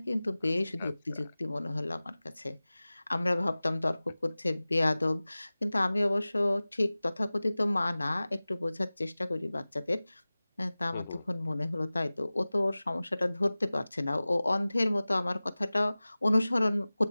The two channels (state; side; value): inverted; both; correlation -0.98